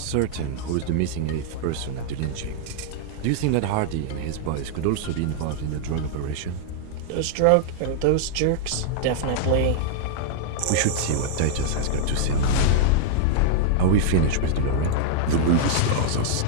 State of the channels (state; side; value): different; both; correlation -0.01